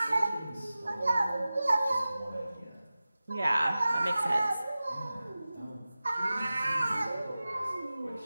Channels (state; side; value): inverted; both; correlation -0.96